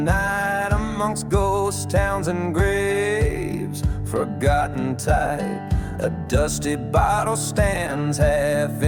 amongst ghost towns and graves, forgotten type. A dusty bottle stands half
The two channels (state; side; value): identical; both; correlation 1.00